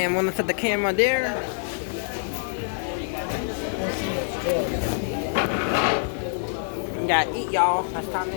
I'm gonna set the camera there. We gotta eat, y'all. It's time to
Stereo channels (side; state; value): right; silent; 61 dB below the other